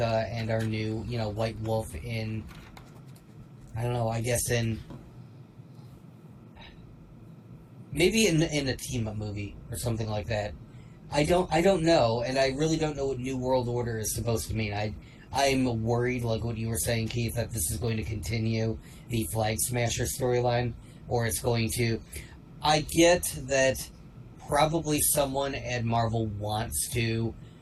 and our new, White Wolf in, I don't know, I guess maybe in a team-up movie or something like that. I don't know, and I really don't know what New World Order is supposed to mean. I'm worried, like what you were saying, Keith, that this is going to continue the Flag Smasher storyline, or it's going to... I get that probably someone at Marvel wants to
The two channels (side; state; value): both; identical; correlation 1.00